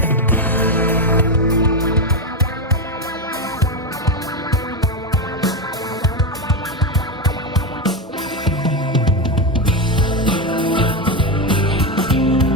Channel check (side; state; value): both; normal; correlation 0.10